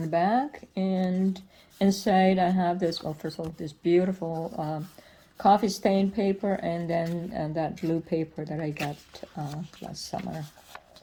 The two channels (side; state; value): both; identical; correlation 1.00